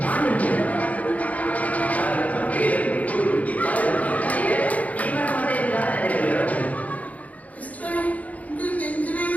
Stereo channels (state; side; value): late; right; 0.071 ms